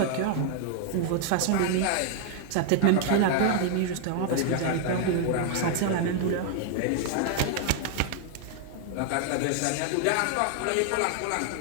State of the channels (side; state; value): both; different; correlation 0.00